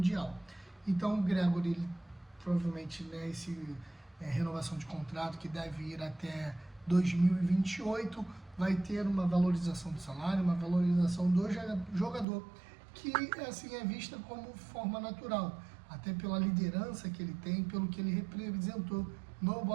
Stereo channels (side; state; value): left; drops out; at 12.2 s